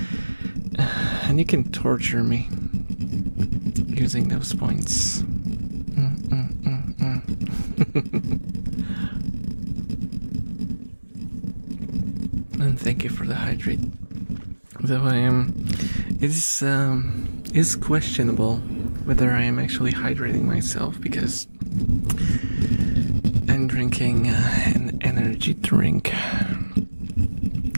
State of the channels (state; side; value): inverted; both; correlation -1.00